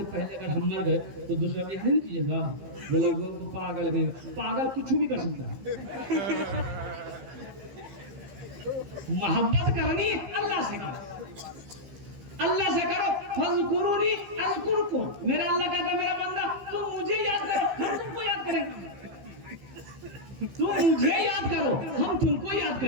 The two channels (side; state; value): left; late; 15 ms